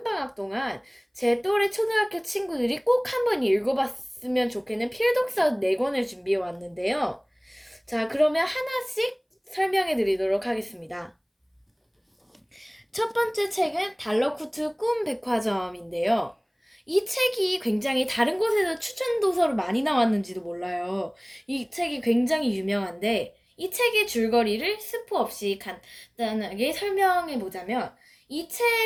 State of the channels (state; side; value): identical; both; correlation 1.00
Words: 동안 제 또래 초등학교 친구들이 꼭 한번 읽어봤으면 좋겠는 필독서 4권을 준비해 왔는데요. 자, 그러면 하나씩 설명해 드리도록 하겠습니다. 첫 번째 책은 달러쿠트 꿈 백화점인데요. 이 책이 굉장히 다른 곳에서 추천 도서로 많이 나왔는지도 몰라요. 이 책이 굉장히 유명한데, 이 책의 줄거리를 스포 없이 간단하게 설명해 보자면, 이